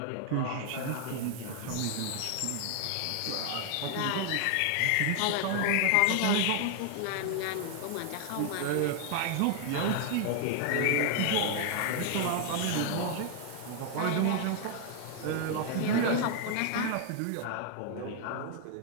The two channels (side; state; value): both; different; correlation 0.00